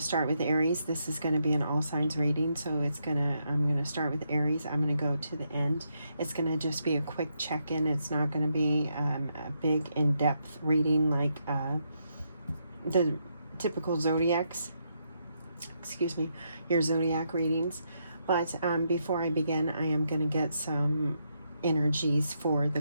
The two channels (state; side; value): inverted; both; correlation -0.79